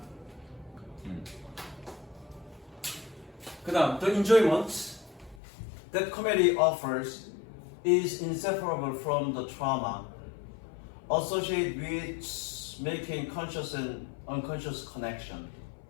그 다음 The enjoyment that comedy offers is inseparable from the trauma associated with making conscious and unconscious connection.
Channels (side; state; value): right; drops out; at 5.4 s